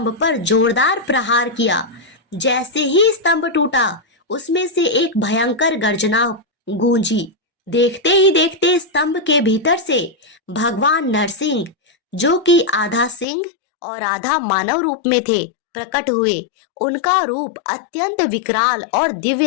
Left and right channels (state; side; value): drops out; right; at 13.2 s